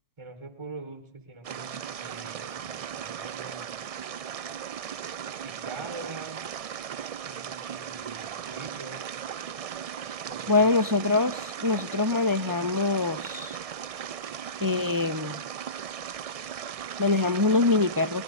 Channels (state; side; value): late; left; 1.6 ms